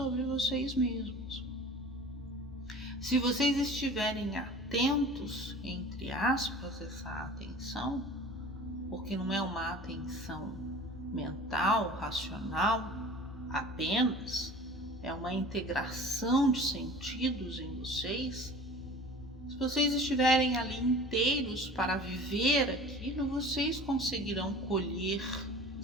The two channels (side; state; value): both; normal; correlation 0.42